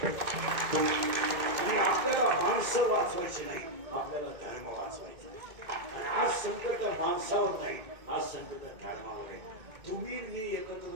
आणि आपल्याला माणसं वाचवायची नाही, आपल्याला धर्म वाचवायचा. आणि आज संकट माणसावर नाही, आज संकट धर्मावर आहे. तुम्ही मी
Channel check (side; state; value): left; late; 2.6 ms